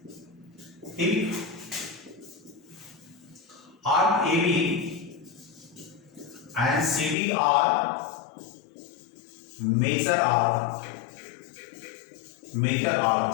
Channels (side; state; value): right; drops out; at 7.2 s